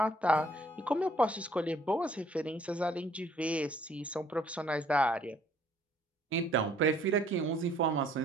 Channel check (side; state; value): both; normal; correlation 0.61